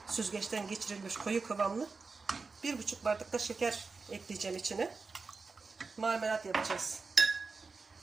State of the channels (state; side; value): quieter; left; 4.4 dB